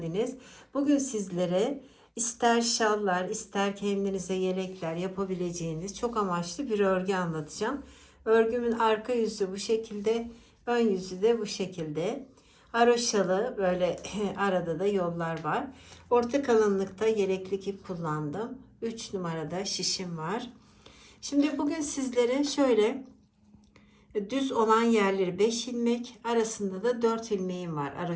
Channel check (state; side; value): identical; both; correlation 1.00